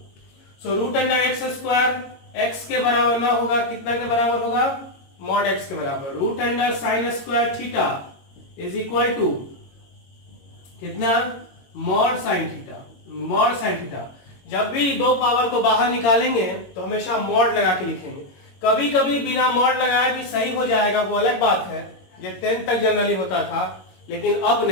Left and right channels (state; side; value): late; right; 22 ms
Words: So root under x square x के बराबर ना होगा, कितना के बराबर होगा, मॉड एक्स के बराबर। Root under sine square theta is equal to कितना, mod sine theta, mod sine theta. जब भी दो पावर को बाहर निकालेंगे तो हमेशा मॉड लगा के लिखेंगे। कभी कभी बिना मॉड लगाए भी सही हो जाएगा, वो अलग बात है, ये 10th तक जनरली होता था, लेकिन अब